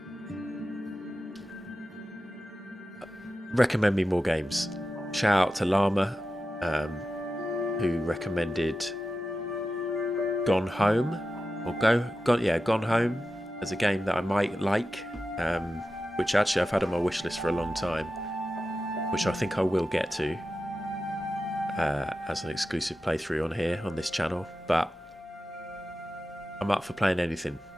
Recommend me more games. Shout out to Llama, who recommended Gone Home, or Gone Home as a game that I might like, which actually I've had on my wish list for a long time, which I think I will get to as an exclusive playthrough on here on this channel. But I'm up for playing anything,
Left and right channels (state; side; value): normal; both; correlation 0.92